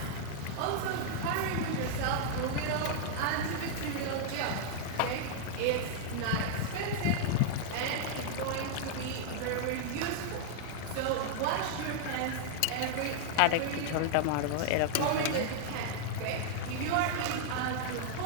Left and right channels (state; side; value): different; both; correlation -0.01